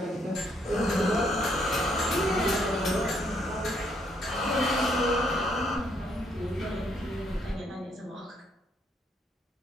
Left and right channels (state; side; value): normal; both; correlation 0.71